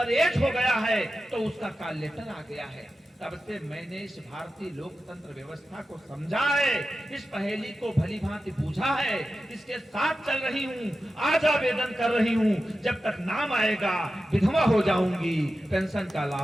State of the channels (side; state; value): both; normal; correlation 0.92